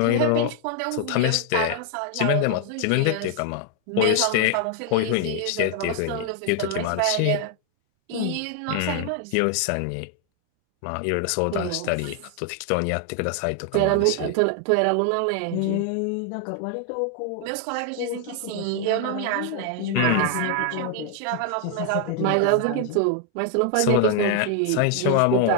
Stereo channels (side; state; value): both; different; correlation 0.00